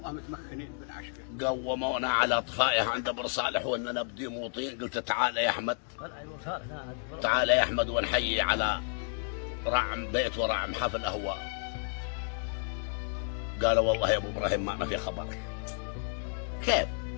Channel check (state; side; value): silent; right; 57 dB below the other